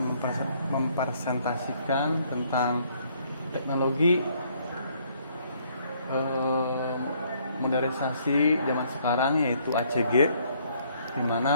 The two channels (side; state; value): both; inverted; correlation -0.65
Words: mempresentasikan tentang teknologi modernisasi zaman sekarang, yaitu ACG, di